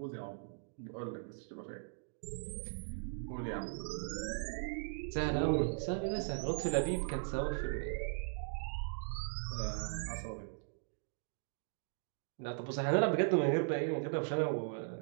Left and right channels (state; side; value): silent; left; digital silence